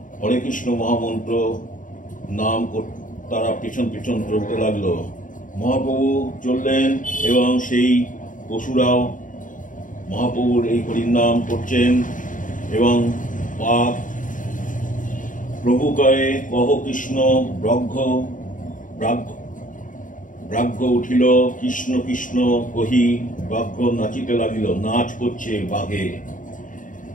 হরে কৃষ্ণ মহামন্ত্র নাম তারা পেছন পেছন চলতে লাগলো। মহাপ্রভু চললেন এবং সেই পশুরাও মহাপ্রভুর এই হরিনাম করছেন। এবং বাঘ প্রভু কয়ে কহ কৃষ্ণ ব্রাহ্য উঠিল, কৃষ্ণ কৃষ্ণ কহি ব্যাঘ্র নাচিতে লাগিল। নাচ করছে বাঘে।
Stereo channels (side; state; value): right; late; 0.38 ms